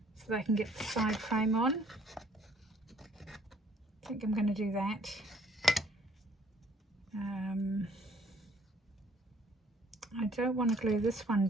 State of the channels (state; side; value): normal; both; correlation 0.60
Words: so that I can get the side frame on. I think I'm going to do that. I don't want to glue this one